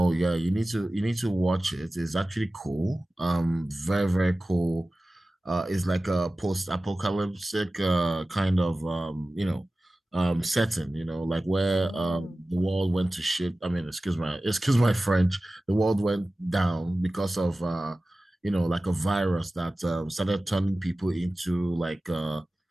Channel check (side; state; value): both; normal; correlation 0.96